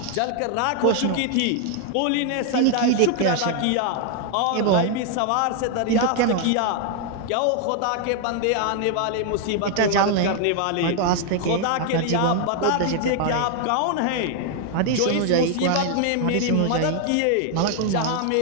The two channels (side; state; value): both; different; correlation 0.00